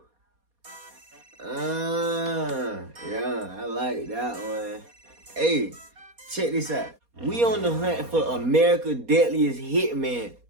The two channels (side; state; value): left; late; 4.2 ms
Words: Yeah, I like that one. Hey, check this out. We on the hunt for America's Deadliest Hitman.